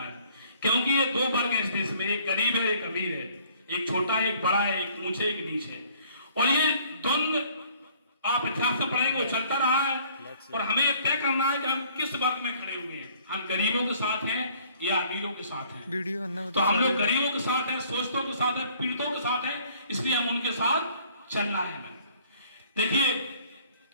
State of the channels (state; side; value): inverted; both; correlation -0.58